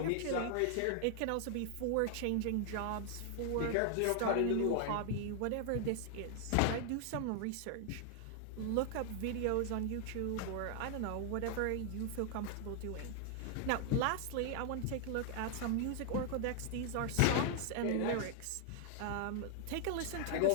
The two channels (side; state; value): both; different; correlation 0.00